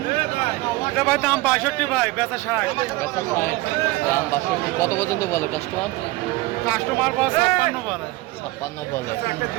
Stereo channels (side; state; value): left; quieter; 19.9 dB